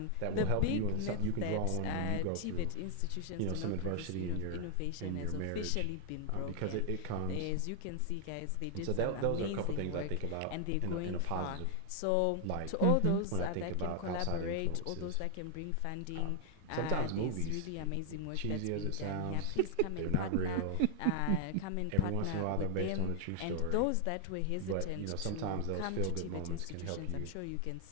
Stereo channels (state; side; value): different; both; correlation 0.00